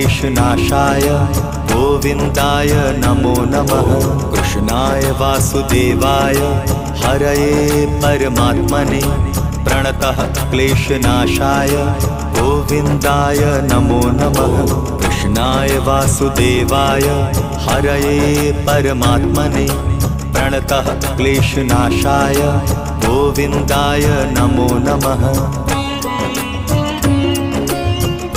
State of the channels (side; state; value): both; identical; correlation 1.00